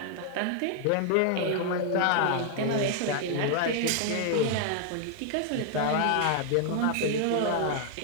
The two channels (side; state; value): both; different; correlation 0.00